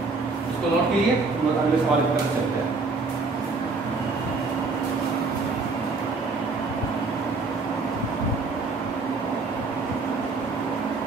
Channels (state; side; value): quieter; left; 4.0 dB